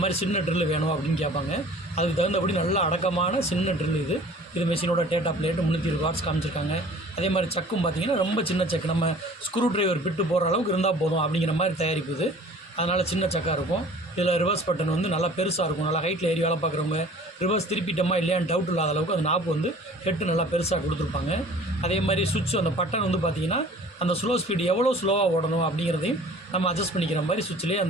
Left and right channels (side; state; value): both; normal; correlation 0.48